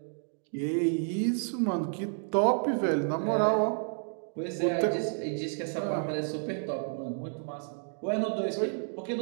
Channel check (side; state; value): left; silent; 57 dB below the other